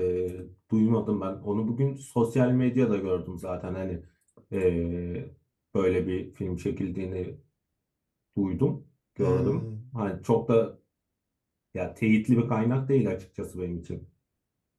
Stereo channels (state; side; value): identical; both; correlation 1.00